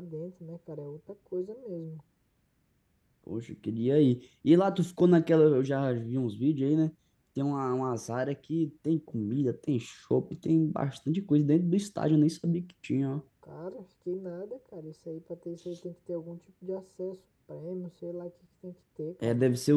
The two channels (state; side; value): identical; both; correlation 1.00